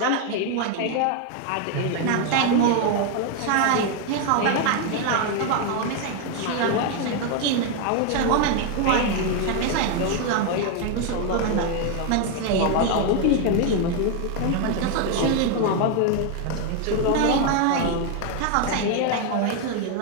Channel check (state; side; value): different; both; correlation 0.01